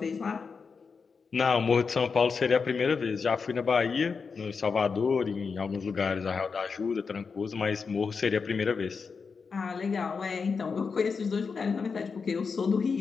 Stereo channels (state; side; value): quieter; right; 5.2 dB